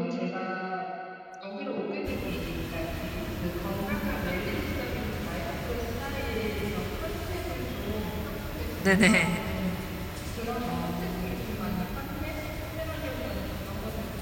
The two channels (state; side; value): identical; both; correlation 1.00